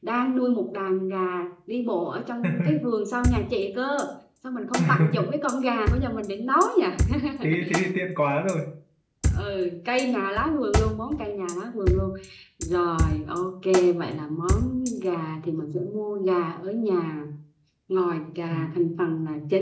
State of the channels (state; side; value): identical; both; correlation 1.00